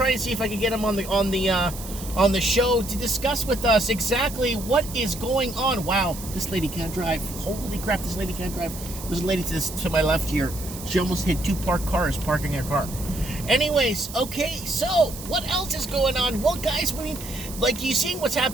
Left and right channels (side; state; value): right; noise; hiss, 12 dB below the sound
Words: and see if I can get him on the show to discuss with us exactly what is going on. Wow, this lady can't drive. Holy crap, this lady can't drive. There's a lady to my left here. She almost hit 2 parked cars parking her car. Anyways, okay, so what else is going on? Well, guys, I mean, like, you seeing what's